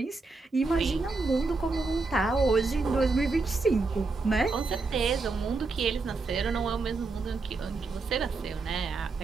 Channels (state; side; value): quieter; left; 3.9 dB